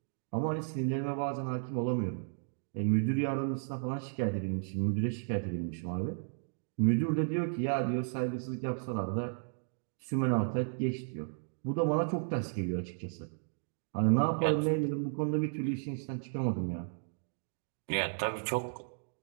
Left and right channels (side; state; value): left; silent; digital silence